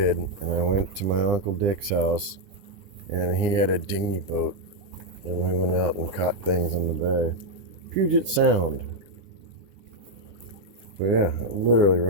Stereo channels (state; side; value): late; left; 10 ms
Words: and I went to my Uncle Dick's house and he had a dinghy boat and we went out and caught things on the bay. Puget Sound. But yeah, literally